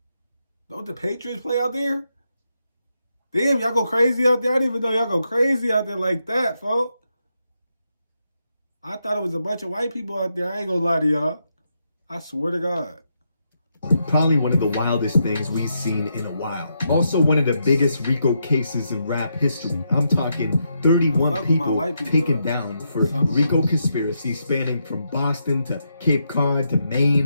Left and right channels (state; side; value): inverted; both; correlation -0.82